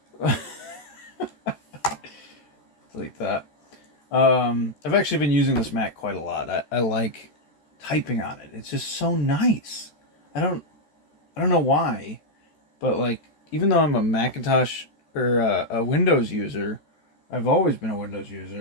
Delete that. I've actually been using this Mac quite a lot. I like typing on it. It's just so nice. I don't I don't know why, but like even though I'm a Macintosh or a Windows user, I've always been a Windows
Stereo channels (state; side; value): late; right; 13 ms